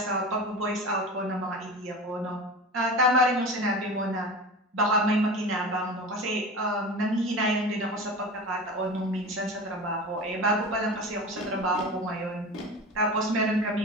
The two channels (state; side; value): normal; both; correlation 0.31